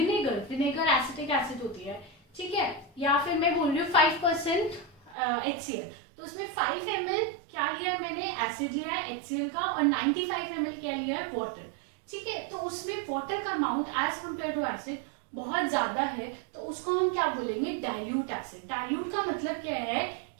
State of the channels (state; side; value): drops out; left; at 5.2 s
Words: एसिटिक एसिड होती है, ठीक है। या फिर मैं बोल रही हूँ 5% HCl, तो उसमें 5 ml क्या लिया है मैंने? एसिड लिया है HCl का, और 95 ml क्या लिया है? वाटर, ठीक है। तो उसमें वाटर का amount as compare to acid बहुत ज्यादा है, तो उसको हम क्या बोलेंगे? Dilute acid. डाइल्यूट का मतलब क्या है